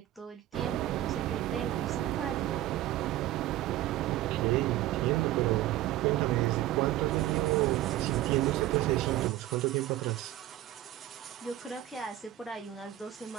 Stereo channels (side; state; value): left; quieter; 14.5 dB